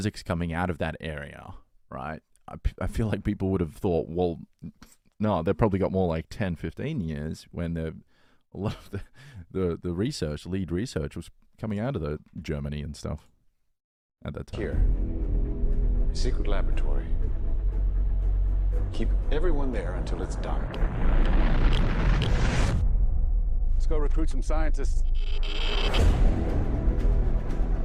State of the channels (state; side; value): identical; both; correlation 1.00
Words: coming out of that area, right? I feel like people would have thought, well, no, they've probably got more like 10, 15 years when a lot of the research, lead research, was coming out of the Germany and stuff at that time. Here, a secret laboratory. Keep everyone there until it's done. Let's go recruit some scientists.